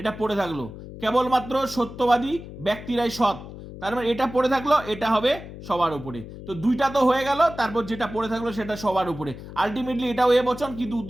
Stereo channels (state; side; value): noise; left; hum, 13 dB below the sound